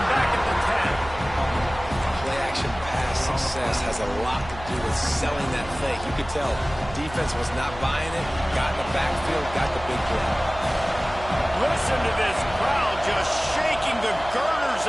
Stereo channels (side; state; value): right; noise; hum, 14 dB below the sound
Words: back at the 10. Play-action pass success has a lot to do with selling that fake. You could tell defense was not buying it, got in the backfield, got the big play. Listen to this crowd just shaking the girders